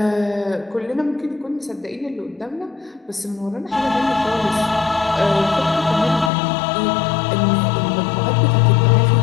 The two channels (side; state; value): right; drops out; at 6.3 s